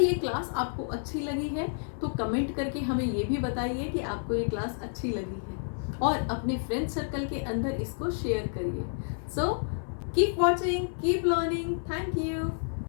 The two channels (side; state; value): right; silent; 58 dB below the other